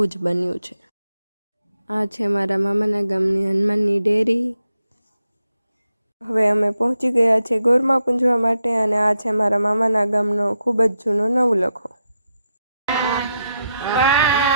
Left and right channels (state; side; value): inverted; both; correlation -0.85